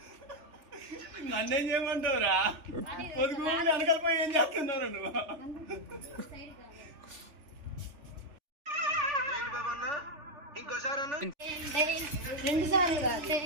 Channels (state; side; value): late; left; 3.4 ms